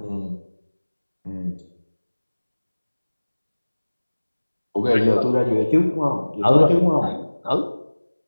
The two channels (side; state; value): both; inverted; correlation -1.00